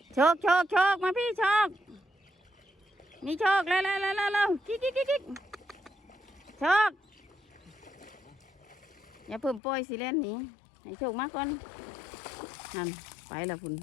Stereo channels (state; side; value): drops out; right; at 9.6 s